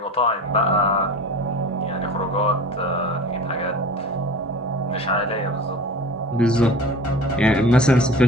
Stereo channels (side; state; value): both; normal; correlation 0.37